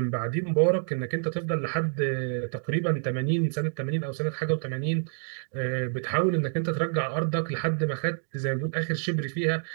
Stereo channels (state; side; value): silent; left; digital silence